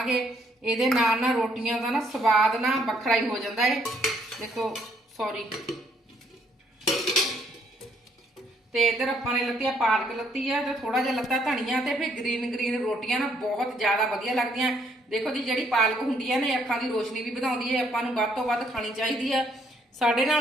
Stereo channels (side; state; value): both; normal; correlation 0.68